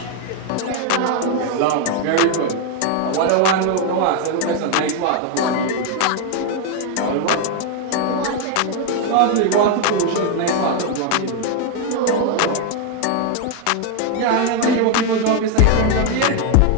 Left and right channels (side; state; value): both; different; correlation 0.01